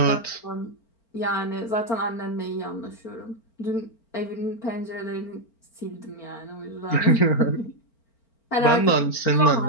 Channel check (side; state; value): right; late; 4.4 ms